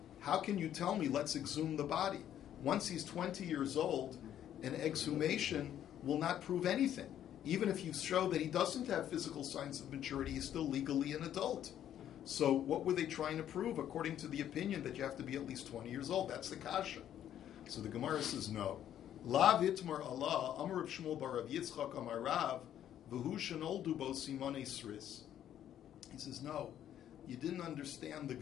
how can you tell me let's exhume the body? Once he's 20 years old, an exhumation will not prove anything. Even if you show that he doesn't have physical signs of maturity, he's still legally an adult. So what were they trying to prove according to the opinion that you have to be at least 20 years old? That's the kasha. So the Gemara says no. La vitmar Allah, Amar Rav Shmuel bar Rav Yitzchak Amar Rav, v'hu shenoldu bo simone sris. He says, no, you didn't understand the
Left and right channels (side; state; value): right; quieter; 10.7 dB